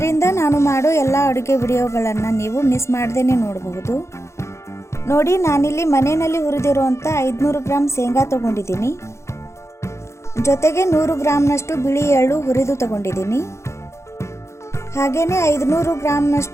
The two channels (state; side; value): late; right; 0.13 ms